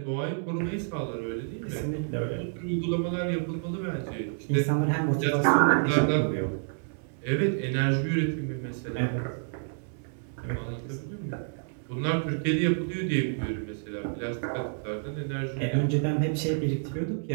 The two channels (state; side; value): silent; left; 59 dB below the other